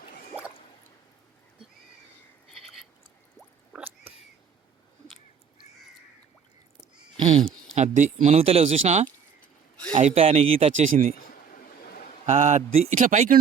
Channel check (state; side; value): quieter; left; 6.9 dB